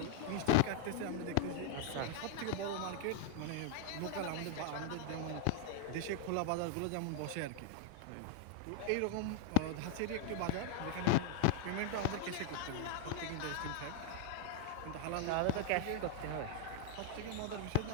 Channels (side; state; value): both; different; correlation 0.00